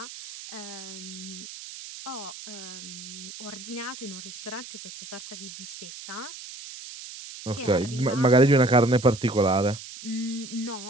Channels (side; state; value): right; noise; hiss, 13 dB below the sound